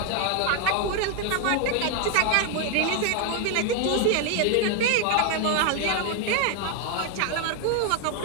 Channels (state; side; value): different; both; correlation 0.01